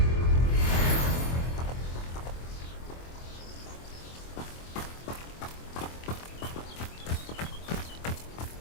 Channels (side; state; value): right; late; 24 ms